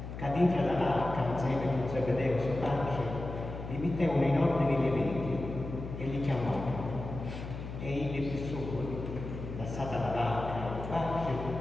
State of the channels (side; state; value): left; noise; hum, 8 dB below the sound